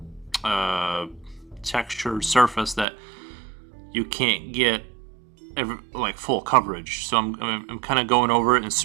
textured surface that you can't get like full coverage. So I'm kind of going over it and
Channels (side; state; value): left; drops out; at 2.9 s